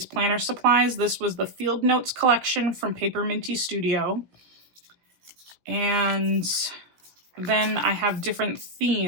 planner supplies. This was the Field Notes collection from Paper Minty Studio. And then I have different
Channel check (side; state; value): left; late; 17 ms